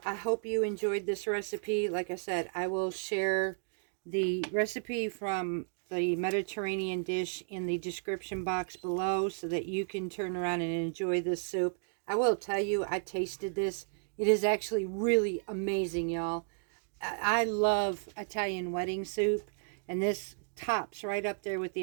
I hope you enjoyed this recipe. Like I said, I will share the recipe from the Mediterranean dish in the description box below so that you can turn around and enjoy this soup. I will tell you, I tasted this. It is actually really amazing, y'all. I love Italian wedding soup, and this tops right up there with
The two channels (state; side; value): silent; left; digital silence